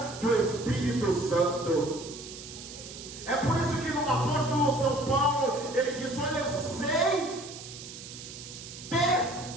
do Espírito Santo? É por isso que no apóstolo São Paulo ele diz, olha, eu sei ter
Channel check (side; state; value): right; noise; hiss, 13 dB below the sound